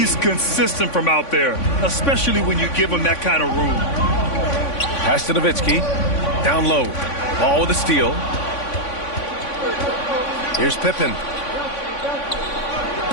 consistent from out there, especially when you give him that kind of room. Pass to Nowitzki. Down low. Ball with a steal. Here's Pippen.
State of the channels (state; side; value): late; right; 3.5 ms